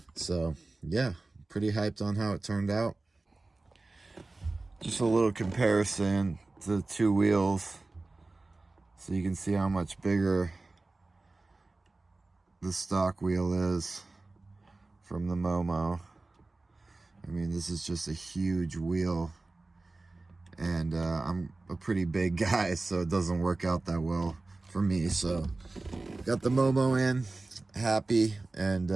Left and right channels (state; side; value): quieter; left; 3.3 dB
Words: So yeah, pretty hyped on how it turned out. Just a little comparison to the two wheels, so you can see how much bigger the stock wheel is from the Momo. I mean, this is just a huge wheel, and I'm a pretty big guy, so it doesn't work out that well for me. So got the Momo in, happy, and